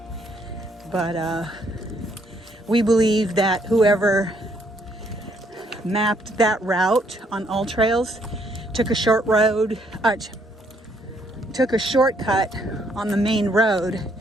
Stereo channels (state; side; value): normal; both; correlation 0.70